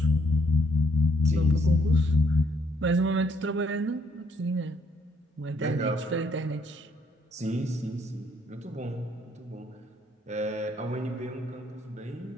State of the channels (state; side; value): normal; both; correlation 0.70